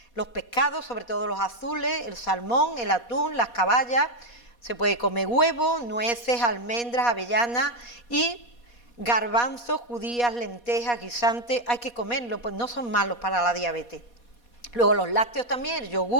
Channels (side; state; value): right; late; 4.2 ms